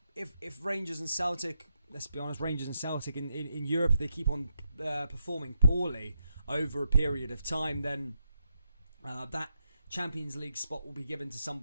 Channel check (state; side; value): inverted; both; correlation -0.84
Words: if Rangers and Celtic, let's be honest, Rangers and Celtic in Europe, if they keep on performing poorly over a period of time, then that Champions League spot will be given to